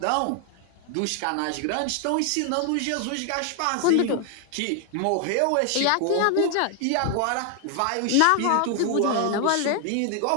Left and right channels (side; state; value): both; different; correlation 0.00